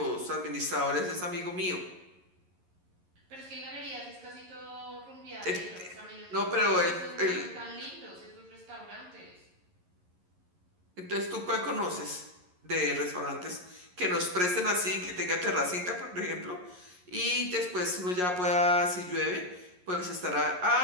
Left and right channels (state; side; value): late; left; 11 ms